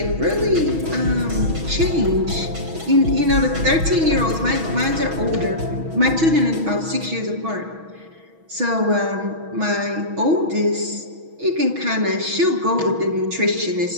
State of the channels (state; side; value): late; left; 6.2 ms